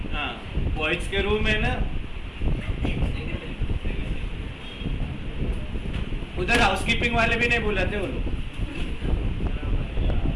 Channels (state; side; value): identical; both; correlation 1.00